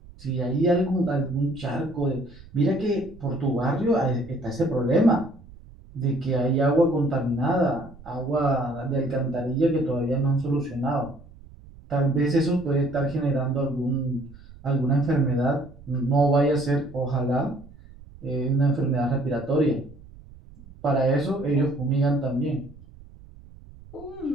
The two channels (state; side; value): noise; right; rumble, 21 dB below the sound